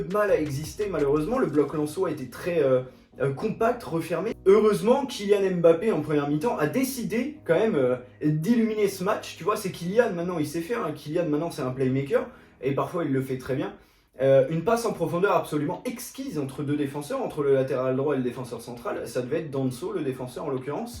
de mal à exister, malheureusement, le bloc lensois était très compact, refermé. Heureusement, Kylian Mbappé en première mi-temps a décidé quand même d'illuminer ce match, tu vois, c'est Kylian maintenant, il sait faire, hein. Kylian maintenant c'est un playmaker, et parfois il le fait très bien. Une passe en profondeur absolument exquise entre deux défenseurs, entre le latéral droit et le défenseur central, ça devait être Danso, le défenseur en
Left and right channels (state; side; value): identical; both; correlation 1.00